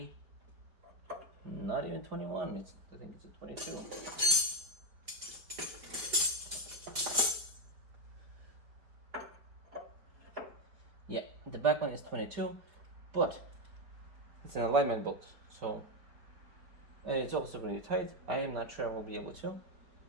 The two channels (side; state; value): left; late; 4.9 ms